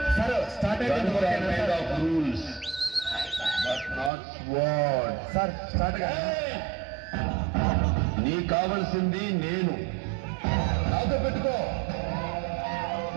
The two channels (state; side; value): drops out; left; at 4.1 s